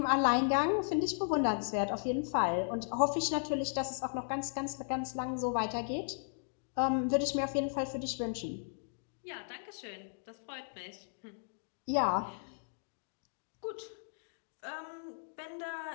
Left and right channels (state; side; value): silent; right; digital silence